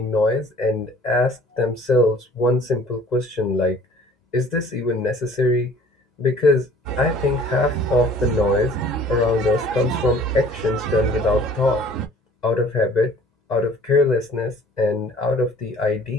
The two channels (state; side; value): normal; both; correlation 0.51